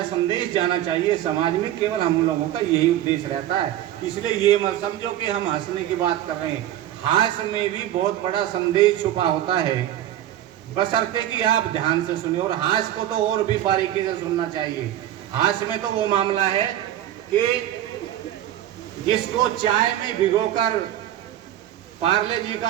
संदेश जाना चाहिए समाज में, केवल हम लोगों का यही उद्देश्य रहता है। इसलिए ये मत समझो कि हम हंसने की बात कर रहे हैं। हास्य में भी बहुत बड़ा संदेश छुपा होता है, बशर्ते कि आप ध्यान से सुनिए। और हास्य को तो और भी बारीकी से सुनना चाहिए। हास्य में तो वो मामला है कि जिसको चाय में भिगोकर, पार्ले जी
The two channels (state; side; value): quieter; left; 12.5 dB